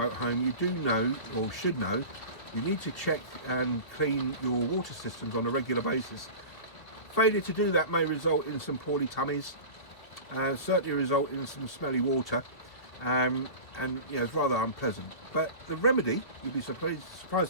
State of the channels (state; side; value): late; right; 2.5 ms